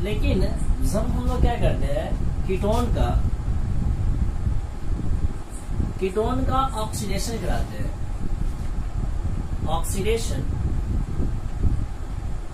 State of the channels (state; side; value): identical; both; correlation 1.00